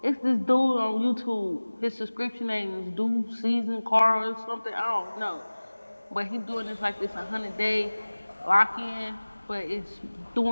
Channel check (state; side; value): inverted; both; correlation -1.00